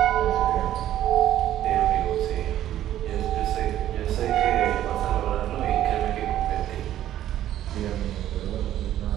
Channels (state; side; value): quieter; left; 12.4 dB